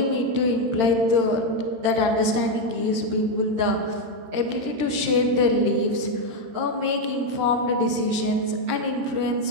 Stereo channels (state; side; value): late; left; 13 ms